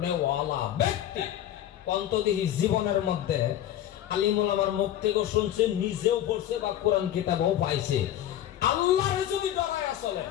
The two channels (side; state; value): right; quieter; 11.8 dB